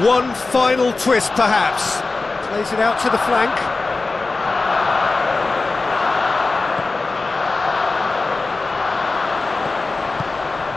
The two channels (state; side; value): quieter; right; 3.6 dB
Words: One final twist, perhaps. Plays it out to the flank.